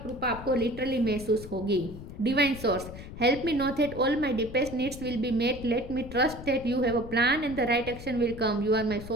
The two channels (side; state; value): left; noise; rumble, 12 dB below the sound